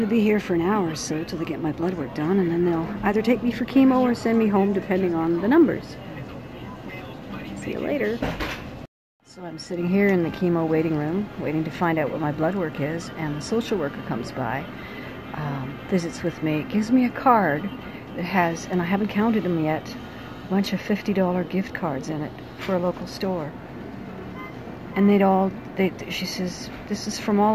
to be here for an hour or so till they get my blood work done, and then they'll either take me for chemo or send me home depending on the numbers. See you later. So I'm sitting here in the chemo waiting room, waiting to find out what my blood work is, and the social worker comes by, visits with me, gives me a card that has, and I haven't counted them yet, a bunch of $50 gift cards in it for a local store. And she says, this is from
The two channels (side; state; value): both; identical; correlation 1.00